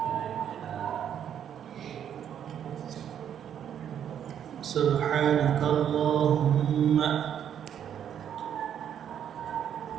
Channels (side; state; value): left; quieter; 9.2 dB